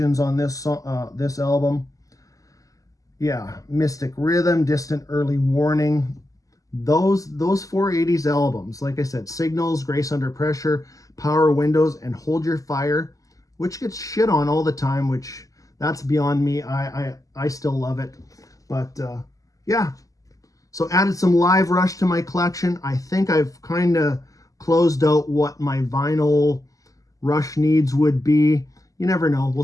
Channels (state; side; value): late; right; 0.17 ms